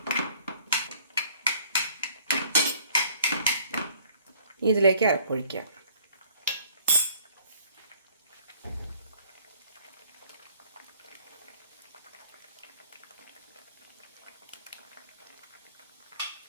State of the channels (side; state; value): both; inverted; correlation -0.56